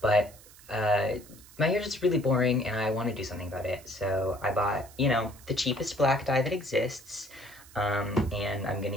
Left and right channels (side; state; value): right; noise; hiss, 22 dB below the sound